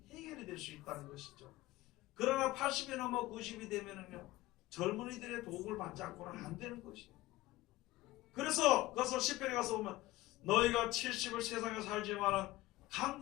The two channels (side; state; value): right; quieter; 17.8 dB